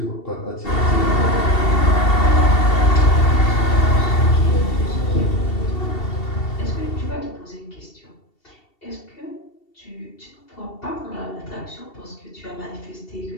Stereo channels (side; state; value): right; late; 2.7 ms